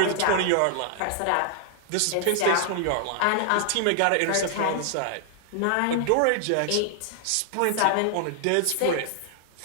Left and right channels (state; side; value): different; both; correlation 0.00